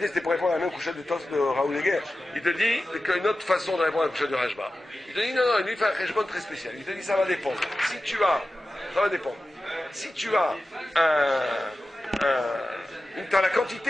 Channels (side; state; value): both; normal; correlation 0.94